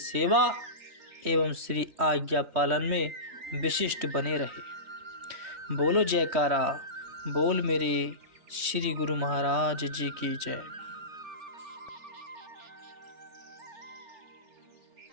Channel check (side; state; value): left; late; 3.2 ms